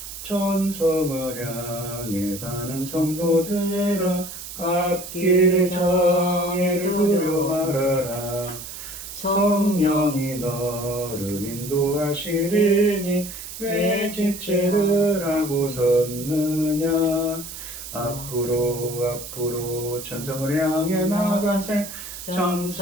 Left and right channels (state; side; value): noise; right; hiss, 11 dB below the sound